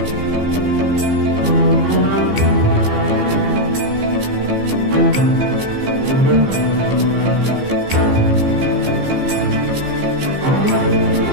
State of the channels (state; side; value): late; left; 15 ms